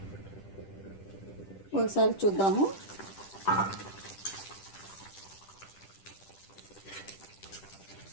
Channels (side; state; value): right; late; 10 ms